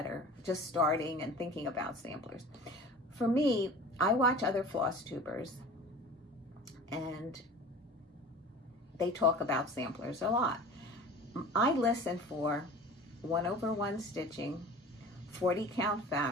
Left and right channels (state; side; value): normal; both; correlation 0.40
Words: are just starting and thinking about samplers. For me, I watch other Flosstubers, and they talk about samplers a lot. I listen for 1/1 stitching, 40 count